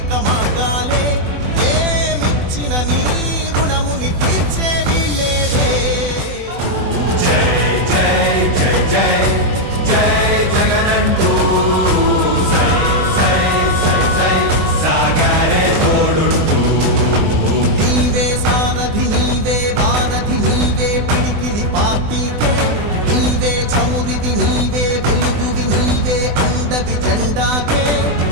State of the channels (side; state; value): left; late; 24 ms